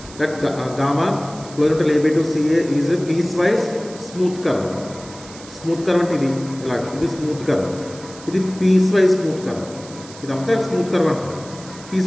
That gamma closure to AB to CA is piece wise smooth curve. Smooth curve అంటే ఇది ఇలా, ఇది స్మూత్ కర్వ్, ఇది పీస్ వైజ్ స్మూత్ కర్వ్. ఇదంతా స్మూత్ కర్వ్ అంటారు. పీస్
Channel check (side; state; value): right; noise; hiss, 18 dB below the sound